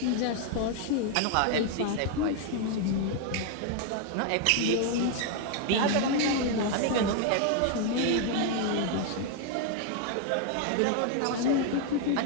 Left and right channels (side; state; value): both; different; correlation 0.00